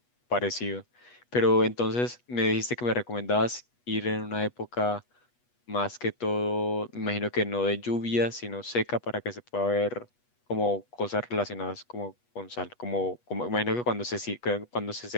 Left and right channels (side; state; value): right; late; 8.2 ms